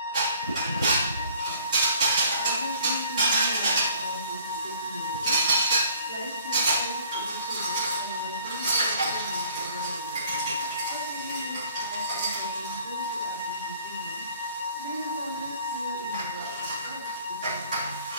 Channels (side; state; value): both; inverted; correlation -0.55